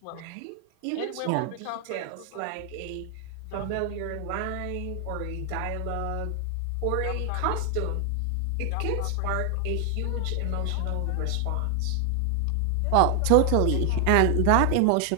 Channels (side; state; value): both; different; correlation 0.00